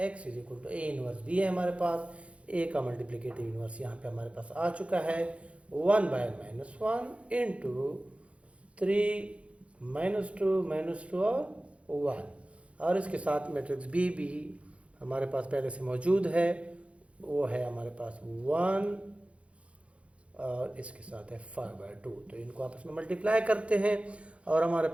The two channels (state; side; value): late; left; 0.062 ms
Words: x is equal to a inverse b है हमारे पास, a का मल्टीप्लिकेटिव इनवर्स यहाँ पे हमारे पास आ चुका है 1/-1 इंटू 3 -2 और 1, और इसके साथ मैट्रिक्स बी भी हमारे पास पहले से मौजूद है, वो है हमारे पास 1 और इसके साथ है 5/2। तो इनको आपस में मल्टीप्लाई करते हैं और हमारे